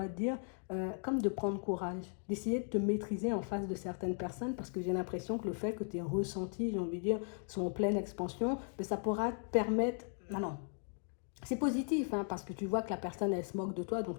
te dire, comme de prendre courage, d'essayer de te maîtriser en face de certaines personnes, parce que j'ai l'impression que le fait que tes ressentis, j'ai envie de dire, sont en pleine expansion, mais ça pourra te permettre... Non, c'est positif, hein, parce que tu vois que la personne, elle se moque de toi, donc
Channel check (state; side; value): silent; right; 53 dB below the other